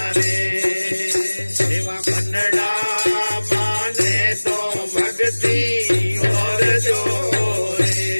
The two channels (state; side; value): inverted; both; correlation -1.00